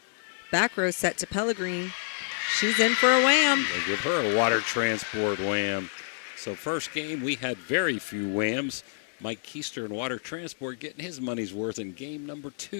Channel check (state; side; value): silent; right; 59 dB below the other